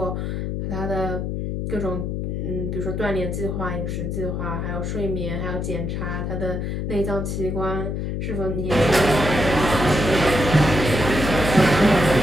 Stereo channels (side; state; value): left; noise; hum, 3 dB below the sound